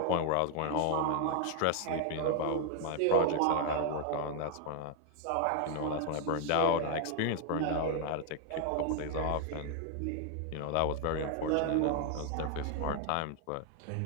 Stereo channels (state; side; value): different; both; correlation 0.00